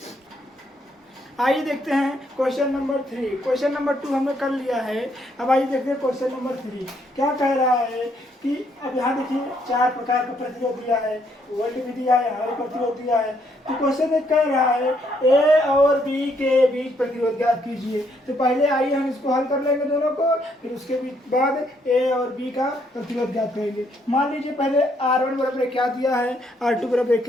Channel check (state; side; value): normal; both; correlation 0.72